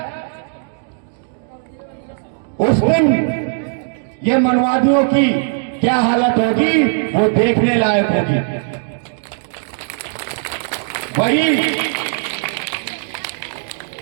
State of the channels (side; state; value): left; silent; digital silence